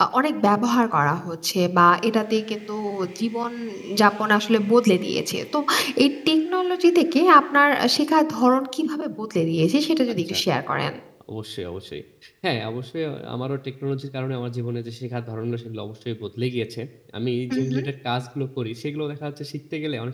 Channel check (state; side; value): identical; both; correlation 1.00